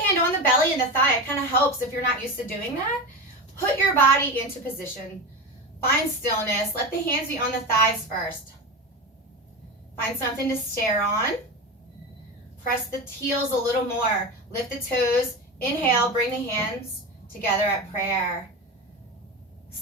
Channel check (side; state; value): both; normal; correlation 0.22